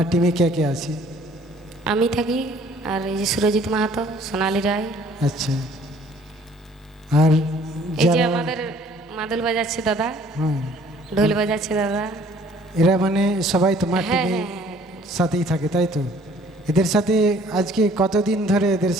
টিমে কে আছে? আমি থাকি, আর এই যে সুরজিৎ মাহাতো, সোনালী রায়, আচ্ছা আর এই যে যারা আমাদের মাদল বাজাচ্ছে দাদা, হ্যাঁ ঢোল বাজাচ্ছে দাদা। এরা মানে সবাই তোমার হ্যাঁ টিমের হ্যাঁ হ্যাঁ সাথেই থাকে তাই তো? এদের সাথে আজকে কতদিন ধরে এদের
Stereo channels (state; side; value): normal; both; correlation 0.57